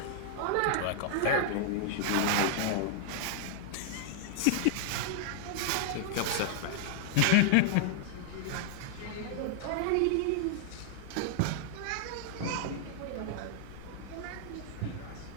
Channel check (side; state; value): both; different; correlation 0.00